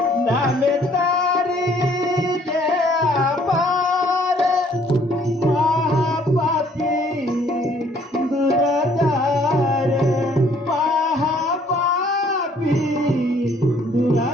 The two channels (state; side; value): normal; both; correlation 0.61